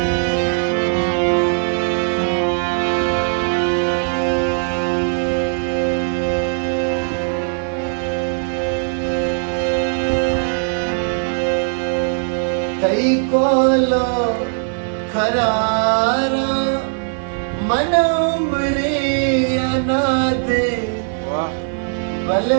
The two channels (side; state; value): left; silent; 57 dB below the other